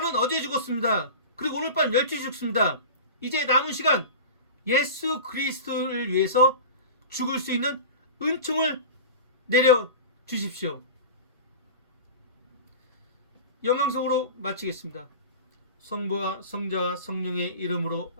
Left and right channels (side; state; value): both; inverted; correlation -0.32